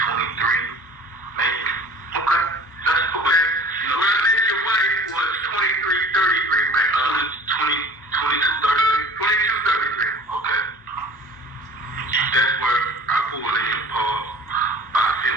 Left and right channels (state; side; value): normal; both; correlation 0.44